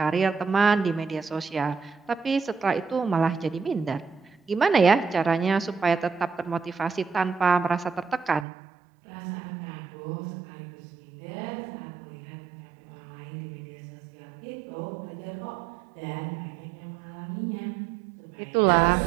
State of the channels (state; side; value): drops out; left; at 8.5 s